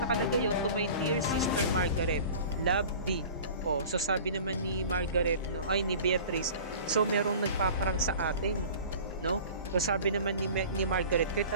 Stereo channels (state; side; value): inverted; both; correlation -0.41